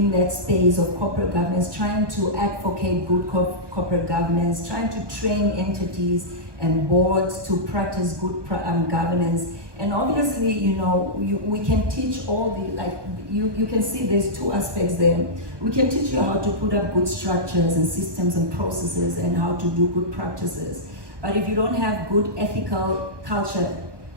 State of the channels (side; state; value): left; late; 1.2 ms